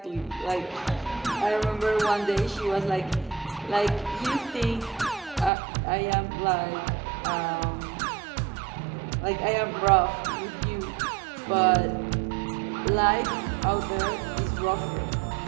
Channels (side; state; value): left; drops out; at 5.5 s